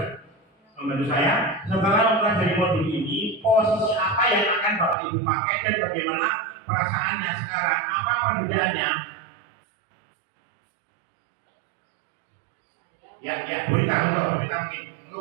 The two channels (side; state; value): left; drops out; at 5.0 s